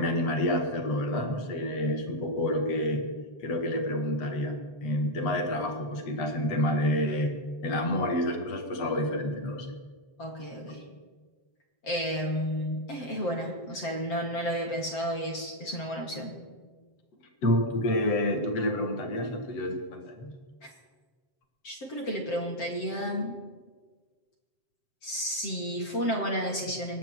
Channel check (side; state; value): right; late; 7.6 ms